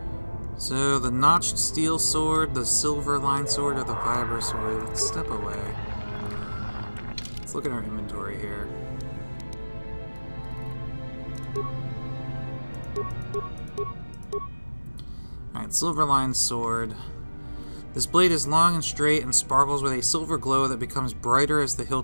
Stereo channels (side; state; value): both; inverted; correlation -1.00